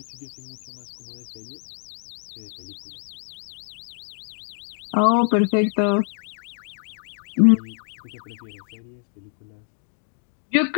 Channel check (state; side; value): silent; right; 61 dB below the other